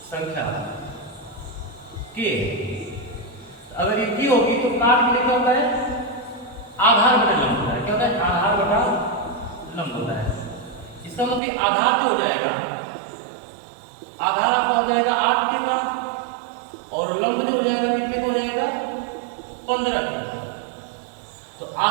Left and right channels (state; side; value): drops out; left; at 11.4 s